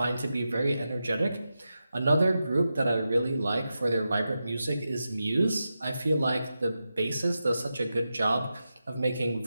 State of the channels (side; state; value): both; inverted; correlation -0.90